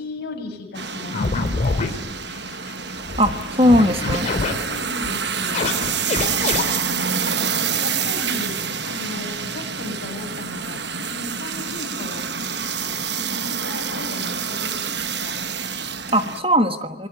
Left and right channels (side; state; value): both; normal; correlation 0.30